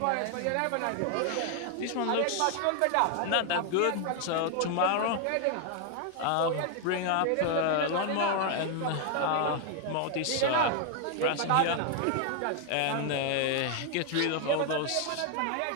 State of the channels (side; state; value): both; different; correlation 0.00